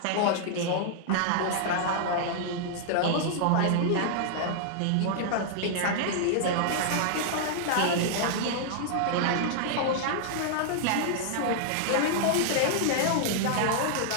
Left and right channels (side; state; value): both; different; correlation -0.01